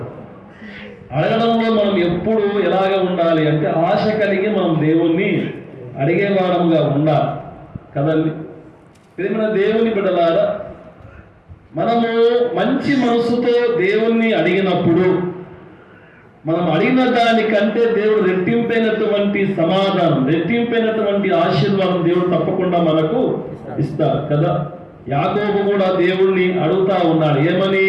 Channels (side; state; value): both; identical; correlation 1.00